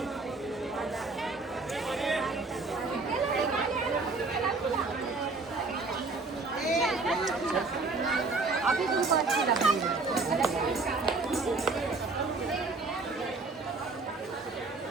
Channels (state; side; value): quieter; left; 3.8 dB